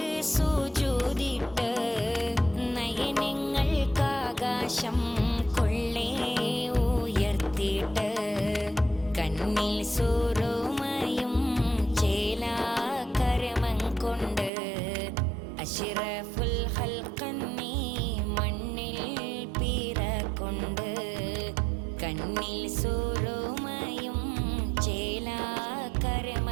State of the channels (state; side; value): drops out; left; at 14.5 s